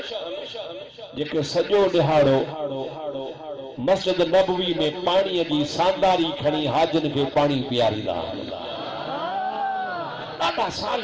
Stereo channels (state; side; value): identical; both; correlation 1.00